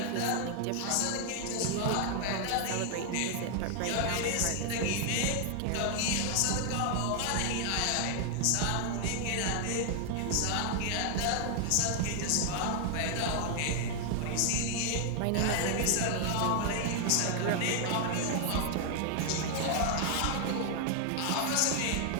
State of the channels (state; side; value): different; both; correlation 0.00